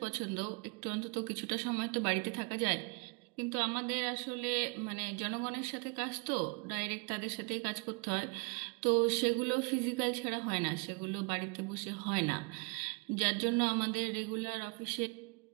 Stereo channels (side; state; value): left; quieter; 30.6 dB